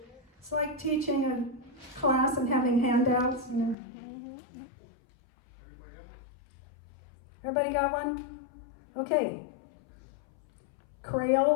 It's like teaching a class and having handouts. You know. Everybody got one? Okay.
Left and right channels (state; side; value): drops out; right; at 3.8 s